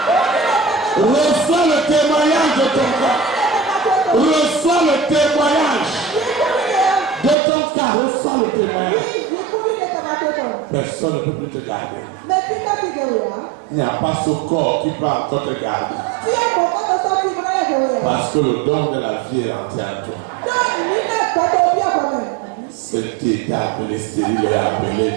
Reçois le témoignage de ton cas. Reçois le témoignage de ton cas. Reçois le témoignage. Personne ne peut plus te garder. Il n'y a pas ce corps qui peut encore te garder. Parce que le don de la vie est rentré en toi. Celle qui était appelée stérile est appelée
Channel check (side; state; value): left; drops out; at 7.4 s